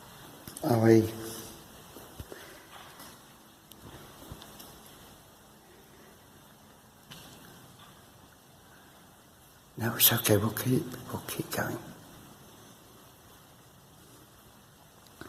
No, it's okay, we'll keep going.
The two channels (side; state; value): both; identical; correlation 1.00